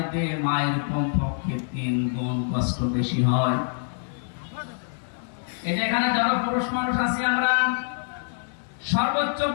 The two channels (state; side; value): silent; right; digital silence